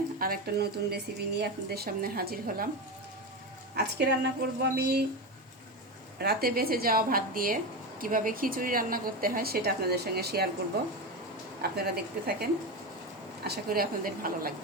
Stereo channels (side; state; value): both; normal; correlation 0.17